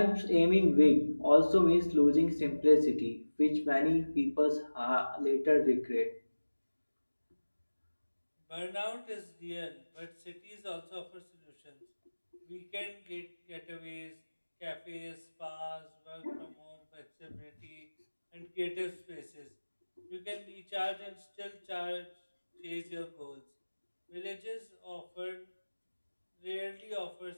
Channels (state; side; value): inverted; both; correlation -1.00